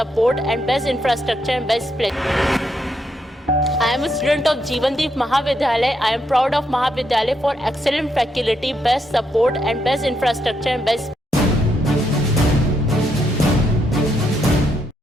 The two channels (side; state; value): both; normal; correlation 0.78